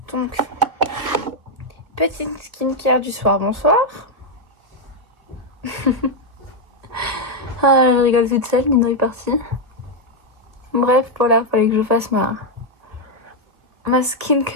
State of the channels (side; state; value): left; late; 1.7 ms